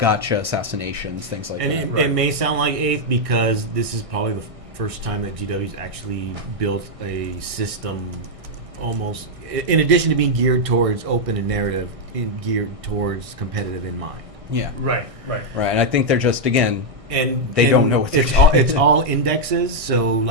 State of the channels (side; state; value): left; late; 1.6 ms